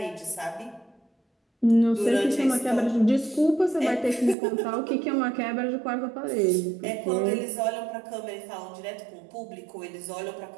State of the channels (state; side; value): drops out; left; at 4.4 s